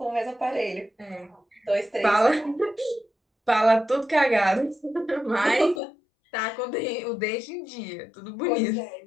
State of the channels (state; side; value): drops out; right; at 5.8 s